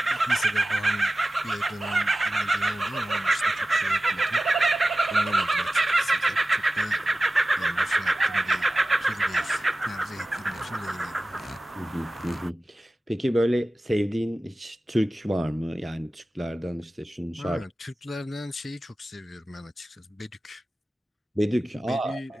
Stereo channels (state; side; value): normal; both; correlation 0.95